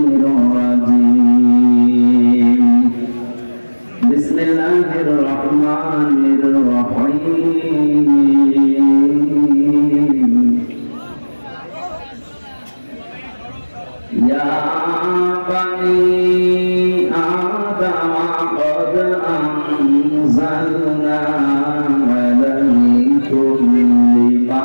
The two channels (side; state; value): both; inverted; correlation -1.00